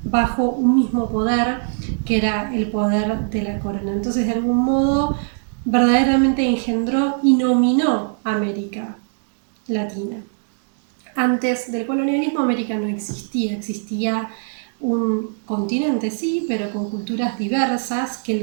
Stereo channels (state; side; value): silent; left; digital silence